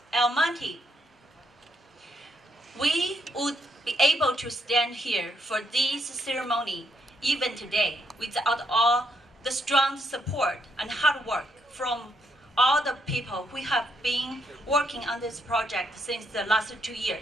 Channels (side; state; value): both; normal; correlation 0.76